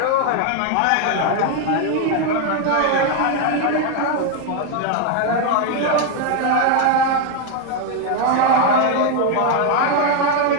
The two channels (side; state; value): both; different; correlation 0.01